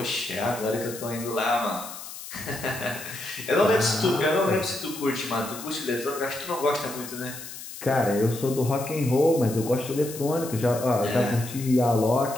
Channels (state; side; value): noise; left; hiss, 12 dB below the sound